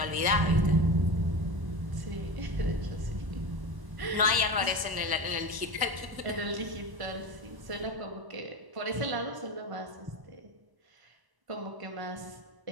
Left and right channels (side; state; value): left; late; 1.0 ms